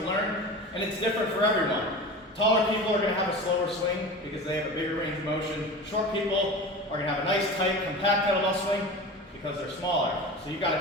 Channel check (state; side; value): normal; both; correlation 0.32